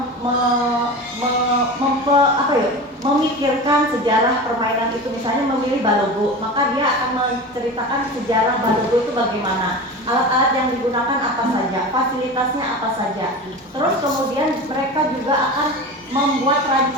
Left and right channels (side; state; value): both; normal; correlation 0.30